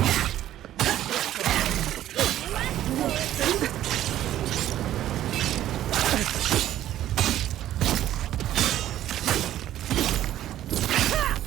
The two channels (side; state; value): left; quieter; 12.7 dB